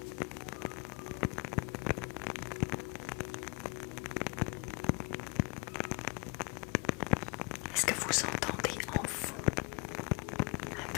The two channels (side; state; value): right; quieter; 28.8 dB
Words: Est-ce que vous entendez en fond